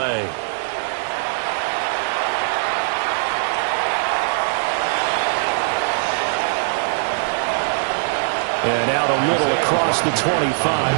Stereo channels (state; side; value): silent; left; 65 dB below the other